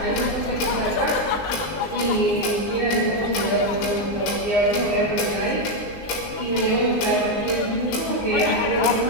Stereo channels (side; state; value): right; late; 19 ms